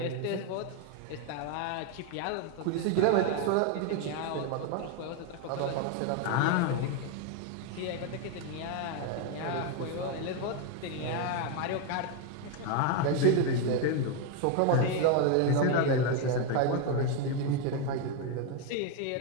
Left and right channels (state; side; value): different; both; correlation 0.01